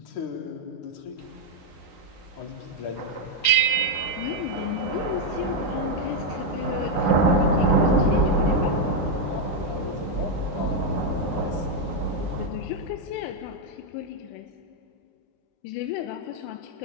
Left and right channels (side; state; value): right; late; 9.2 ms